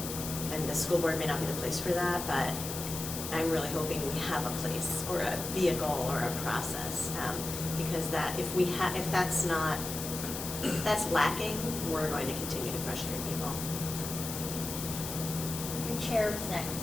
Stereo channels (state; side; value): noise; left; hiss, 6 dB below the sound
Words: the school board may not be the place for that, but I'm really hoping we have a place or a vehicle or a process, because that if that's lacking, we're going to continue to frustrate people. Your chair was